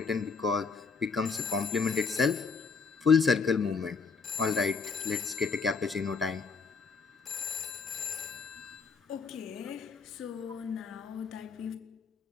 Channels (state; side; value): quieter; right; 5.2 dB